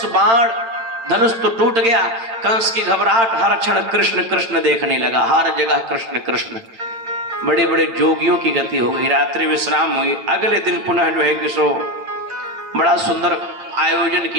धनुष तो टूट गया। कंस की घबराहट, हर क्षण कृष्ण कृष्ण देखने लगा, हर जगह कृष्ण कृष्ण। बड़े बड़े जोगियों की गति हो गई, रात्रि विश्राम हुई। अगले दिन पुनः जो है कि सो बड़ा सुंदर आयोजन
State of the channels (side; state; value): left; late; 8.8 ms